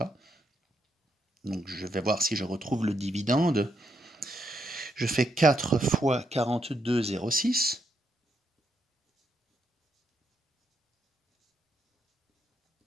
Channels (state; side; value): normal; both; correlation 0.79